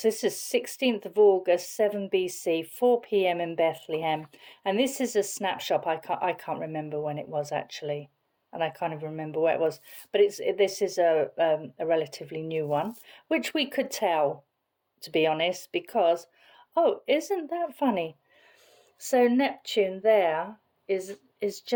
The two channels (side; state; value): both; identical; correlation 1.00